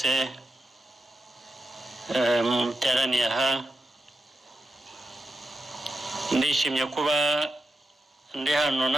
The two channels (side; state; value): both; normal; correlation 0.88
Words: muteraniye aha, ndishimye kuba ndi hano